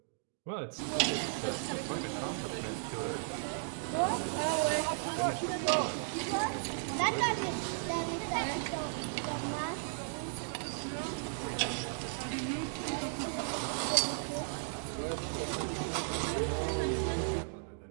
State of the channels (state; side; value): silent; left; digital silence